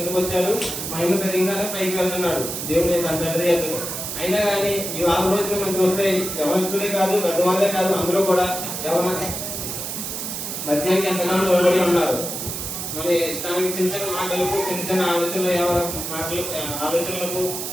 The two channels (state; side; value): noise; right; hiss, 5 dB below the sound